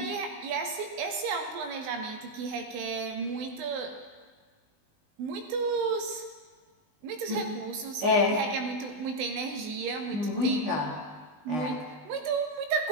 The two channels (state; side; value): late; left; 20 ms